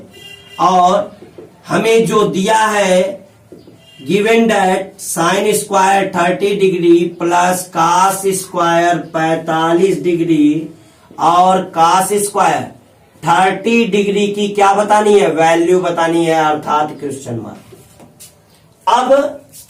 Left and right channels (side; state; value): both; identical; correlation 1.00